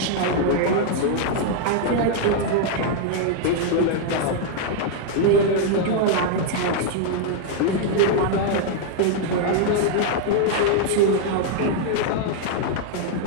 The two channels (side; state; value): both; different; correlation 0.00